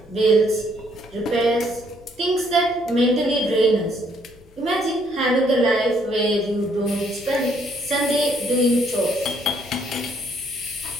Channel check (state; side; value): normal; both; correlation 0.68